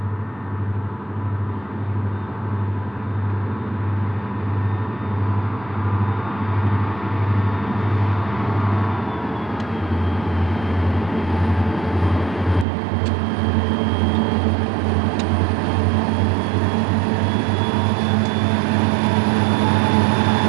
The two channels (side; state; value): left; drops out; at 12.7 s